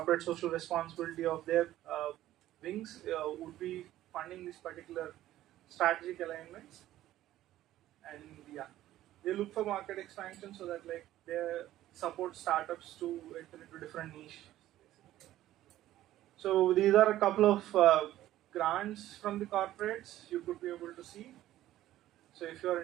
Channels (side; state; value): left; quieter; 14.0 dB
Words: social responsibility of their wings, would be funding these particular strategic alignments. And yeah, they look for market expansion so that like they support startups to enter into different niche. So these are a couple of grants from the corporates you could be able to see. So if you are